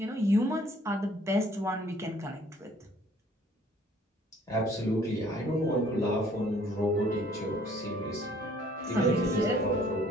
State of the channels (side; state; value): both; normal; correlation 0.58